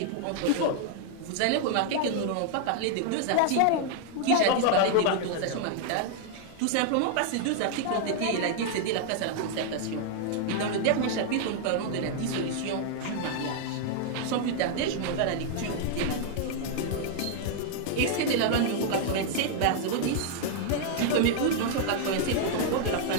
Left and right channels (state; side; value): different; both; correlation 0.00